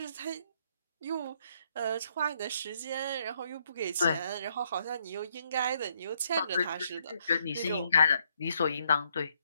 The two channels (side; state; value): both; inverted; correlation -0.72